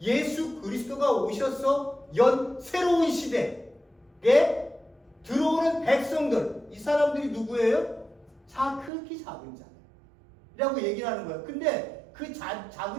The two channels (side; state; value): left; drops out; at 8.9 s